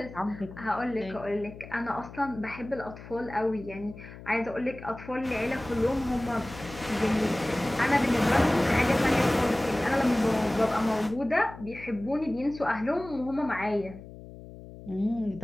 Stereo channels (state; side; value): noise; left; hum, 15 dB below the sound